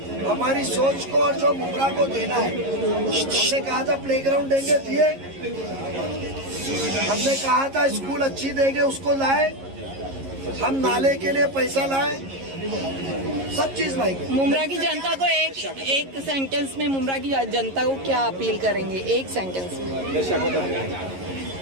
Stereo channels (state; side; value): late; left; 11 ms